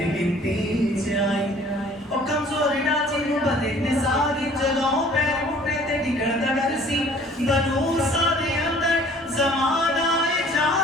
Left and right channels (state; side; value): normal; both; correlation 0.53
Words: गिनती च आई। ओ कमजोर डाची नु बदे ने सारी जगहों पैर मुट्टे ते डिगड़ दा डर सी बनू सा दे अंदर ज़माना